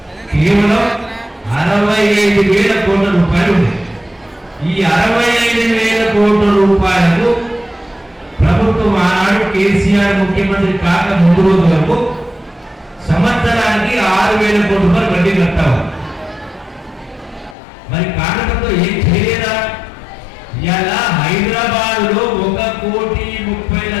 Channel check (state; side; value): drops out; right; at 17.6 s